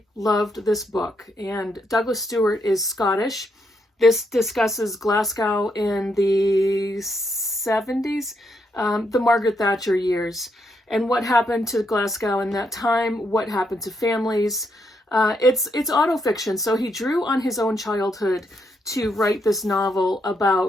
loved this book, and Douglas Stewart is Scottish. This discusses Glasgow in the 70s, the Margaret Thatcher years, and what happened to Glasgow in that time, what happened to families. It's autofiction, so he drew on his own childhood to write this novel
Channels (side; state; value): both; normal; correlation 0.78